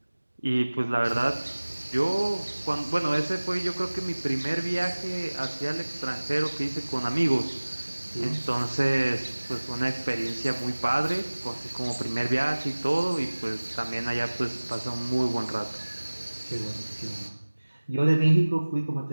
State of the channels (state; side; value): inverted; both; correlation -1.00